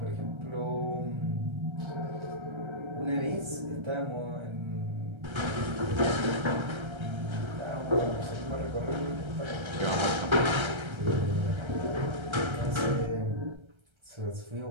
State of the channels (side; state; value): left; late; 1.3 ms